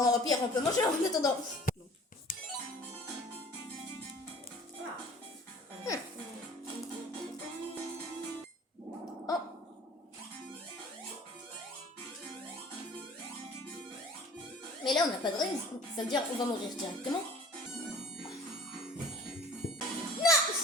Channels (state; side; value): normal; both; correlation 0.46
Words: au pire, on peut manger en attendant. Ah. Oh. Mais là, on n'a pas de raison. Ça veut dire qu'on va mourir directement.